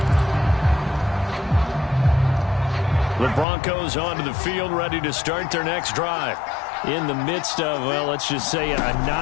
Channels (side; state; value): right; drops out; at 3.5 s